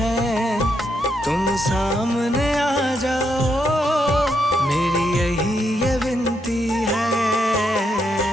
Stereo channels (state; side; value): normal; both; correlation 0.80